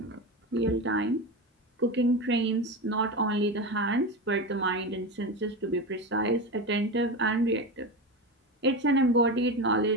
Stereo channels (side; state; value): both; normal; correlation 0.21